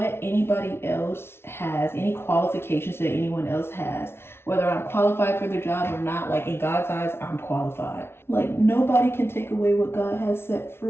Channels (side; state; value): right; late; 0.12 ms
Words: anybody else has, any qualifications that anyone else has, whether I'm qualified for the job or not, like in God's eyes, I'm qualified. Like nobody can take away what God has set